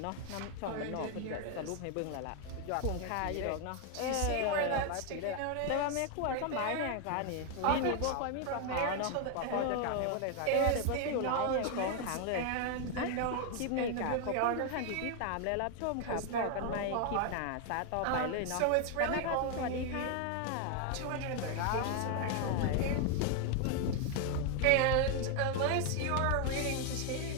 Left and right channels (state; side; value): different; both; correlation 0.01